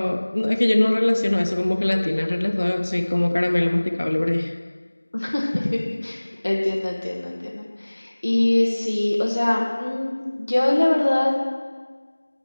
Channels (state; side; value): inverted; both; correlation -1.00